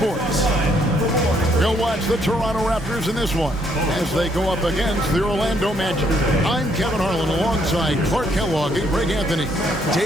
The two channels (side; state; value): both; normal; correlation 0.70